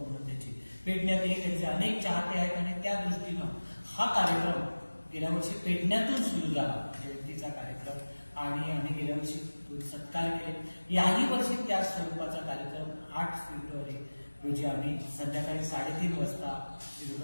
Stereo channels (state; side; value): inverted; both; correlation -1.00